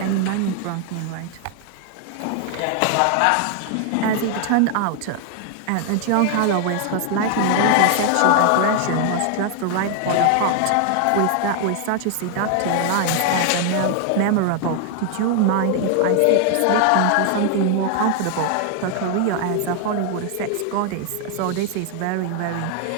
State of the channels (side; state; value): both; different; correlation 0.00